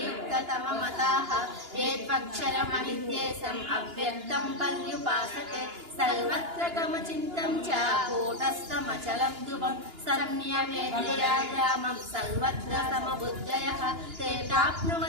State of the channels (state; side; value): late; left; 2.9 ms